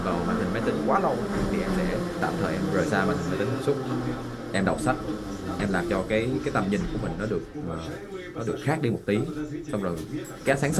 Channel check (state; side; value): identical; both; correlation 1.00